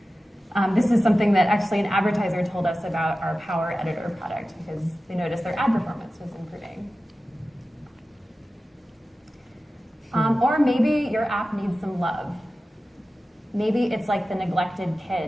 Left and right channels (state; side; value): normal; both; correlation 0.95